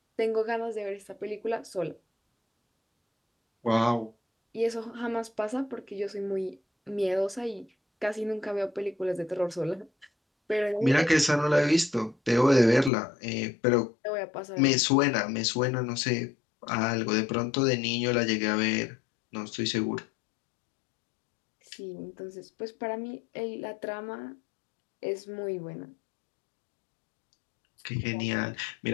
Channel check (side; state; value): right; drops out; at 12.9 s